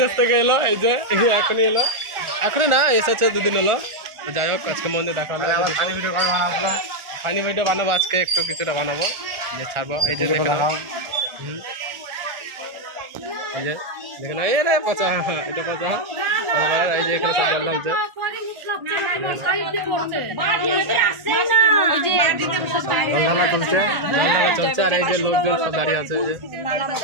থেকে এলো, এই যে এখনই এলো, এখনই না এসেছে 2 দিন হলো। তো যাই হোক আজকে মন্দির দেখা হলো। আবার ফানি ভিডিও কবে বানাবো? ফানি ভিডিও বানাবো আজকে, একটু কিছুটা বানাবো, যে ছাড়বো। এই যে দেখে নাও, এই যে দেখে নাও, এই রে পচা, এটা পচা। এই যে এখানে সব জল ঢালছে, ঢালা চলছে, চলছে। আর এই যে লোকজন সব দাঁড়িয়ে আছে,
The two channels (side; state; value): left; late; 1.4 ms